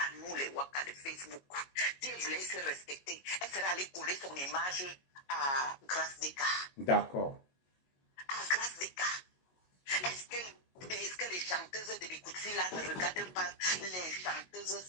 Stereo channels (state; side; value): late; right; 22 ms